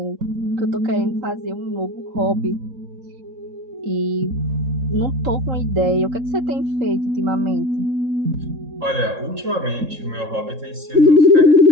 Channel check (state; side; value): late; left; 3.7 ms